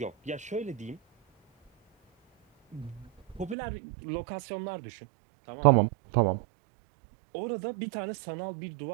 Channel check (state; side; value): drops out; left; at 3.6 s